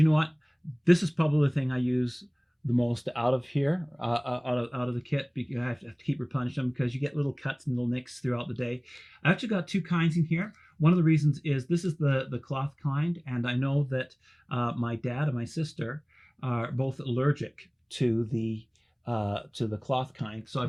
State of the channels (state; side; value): identical; both; correlation 1.00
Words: know what? This is probably the thing I use the most out of here, out of the kit, because I have to keep replenishing them because you get little cuts and little nicks throughout the day. I actually got two kinds in here. One of the reasons is this is the cloth kind, and I know that my dad and my sister are both allergic to the cloth kind, so